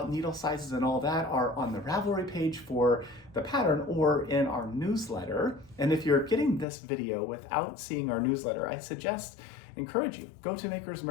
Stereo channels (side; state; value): right; drops out; at 6.7 s